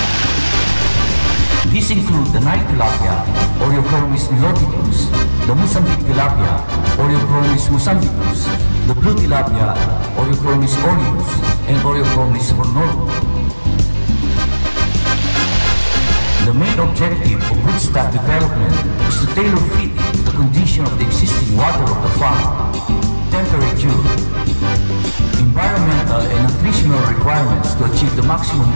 These include the Nile tilapia, Oreochromis niloticus, the Mozambique tilapia, Oreochromis mozambicus, the blue tilapia, Oreochromis aureus, and Oreochromis hornorum. The main objective of broodstock development is to tailor fit it to the condition of the existing water of the farm, temperature, environmental and nutritional requirements to achieve the maximum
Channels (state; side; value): inverted; both; correlation -1.00